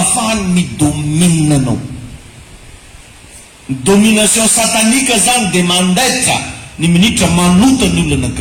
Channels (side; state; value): both; identical; correlation 1.00